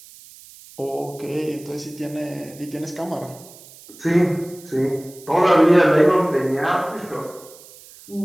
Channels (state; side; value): noise; right; hiss, 21 dB below the sound